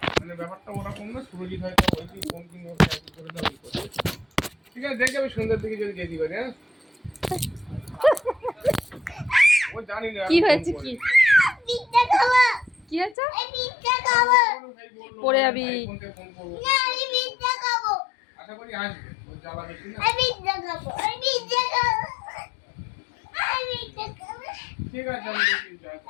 মানে ব্যাপারটা ওরকম না। সুরজিৎ হয়তো ওই ফোন কিনে করে দাও করে। ঠিক আছে, দেখে আমি সন্ধ্যার দিকে যদি যেতে পারি। হ্যাঁ, ও জানি না কি হয়েছে, কি পিজ্জা খাবো। কি হয়েছে? এই পিজ্জা খাবো। পরে যাবি। ফোন করবো না, আমি পিজ্জা খাবো। আশা করি আসবে। ও জ্বালা বেশি না। আমি পিজ্জা খাবো। আমি পিজ্জা খাবো। আমি পিজ্জা খাবো। ঠিক আছে, আমি দেখি যাই।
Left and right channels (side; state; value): right; drops out; at 13.2 s